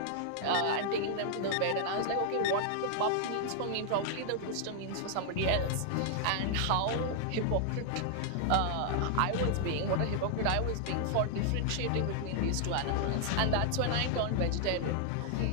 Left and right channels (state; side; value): different; both; correlation -0.01